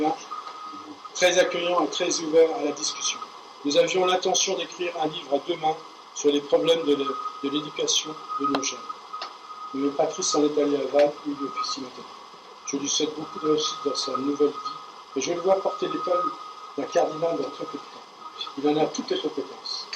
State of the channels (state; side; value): identical; both; correlation 1.00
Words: très accueillant et très ouvert à la discussion. Nous avions l'intention d'écrire un livre à 2 mains sur les problèmes de l'éducation de nos jeunes. Mais Patrice s'en est allé à Vannes où il officie maintenant. Je lui souhaite beaucoup de réussite dans sa nouvelle vie et je le vois porter l'école d'un cardinal dans très peu de temps. Il en a toutes les compétences.